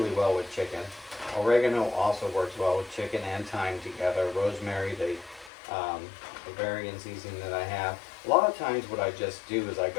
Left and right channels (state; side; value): drops out; right; at 5.5 s